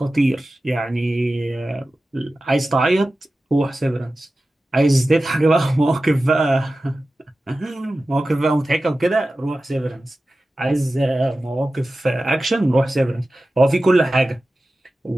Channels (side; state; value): both; normal; correlation 0.95